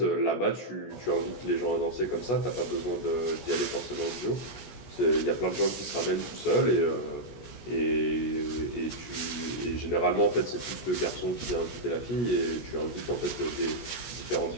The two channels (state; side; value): late; right; 16 ms